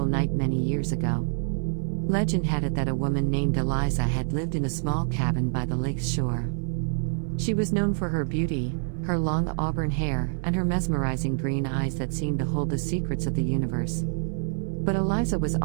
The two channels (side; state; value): left; silent; 56 dB below the other